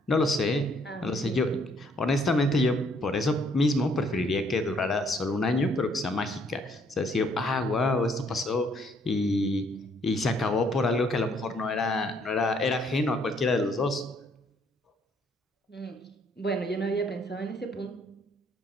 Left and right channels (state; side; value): normal; both; correlation 0.66